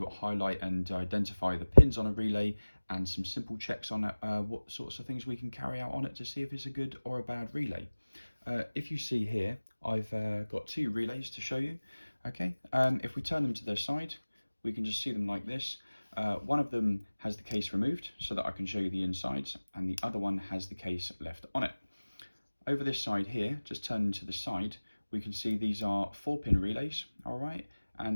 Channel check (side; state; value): both; inverted; correlation -1.00